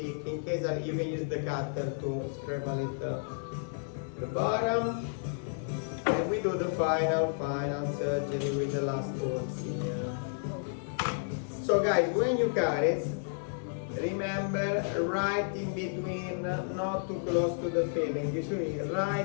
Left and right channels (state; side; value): silent; right; digital silence